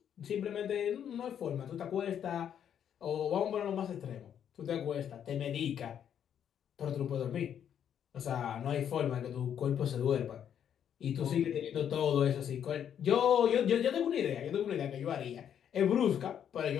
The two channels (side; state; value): right; quieter; 9.1 dB